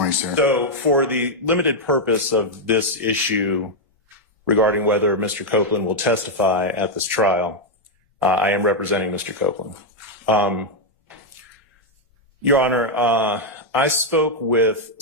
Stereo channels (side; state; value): both; normal; correlation -0.01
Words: sir. So for the limited purpose of this issue regarding whether Mr. Copeland will testify at this trial, I am representing Mr. Copeland. Your Honor, I spoke with